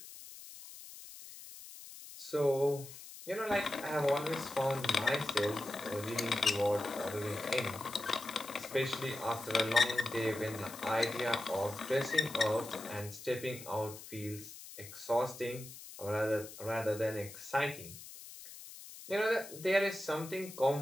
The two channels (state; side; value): noise; left; hiss, 14 dB below the sound